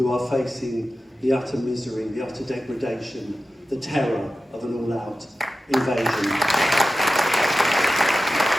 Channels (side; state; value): both; normal; correlation 0.93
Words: are facing the utter misery, the utter degradation, the terror of an all-out invasion.